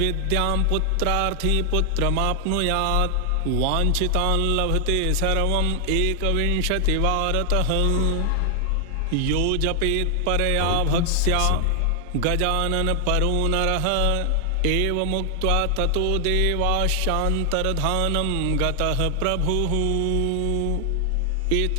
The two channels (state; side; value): different; both; correlation 0.00